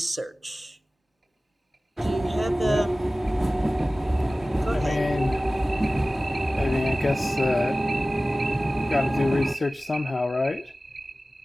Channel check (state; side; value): normal; both; correlation 0.97